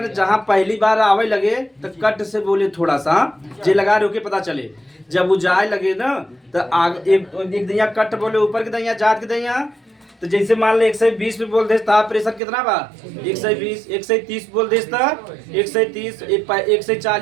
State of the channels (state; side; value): drops out; left; at 12.4 s